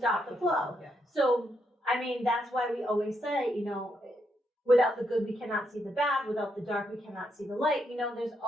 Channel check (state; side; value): normal; both; correlation 0.79